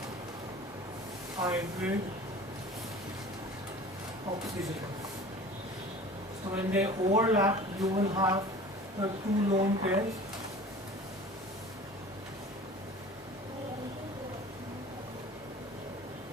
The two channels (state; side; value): normal; both; correlation 0.42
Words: hybrid oxygen. So when they overlap, you will have the two lone pairs.